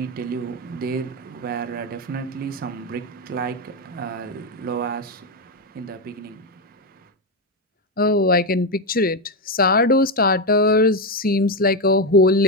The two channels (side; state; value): both; normal; correlation 0.08